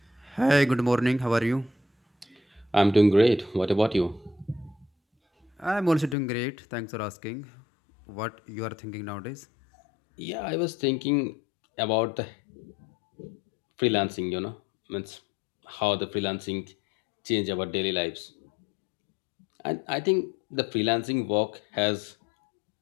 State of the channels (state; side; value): drops out; right; at 6.2 s